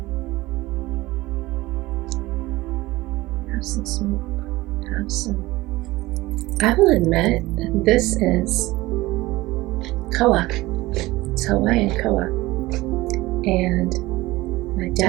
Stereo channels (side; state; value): left; quieter; 19.2 dB